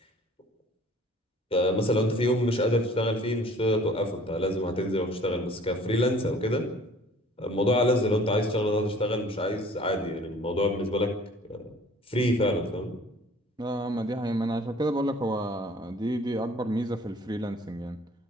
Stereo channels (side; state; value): both; normal; correlation 0.52